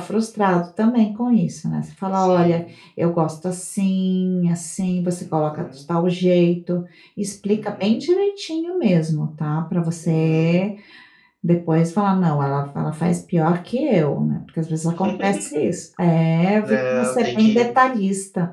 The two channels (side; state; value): both; identical; correlation 1.00